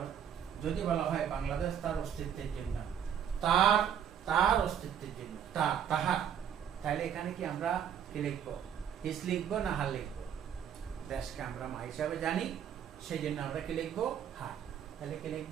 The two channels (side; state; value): left; quieter; 8.9 dB